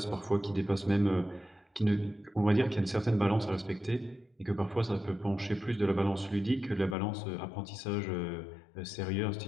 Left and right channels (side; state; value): right; drops out; at 7.0 s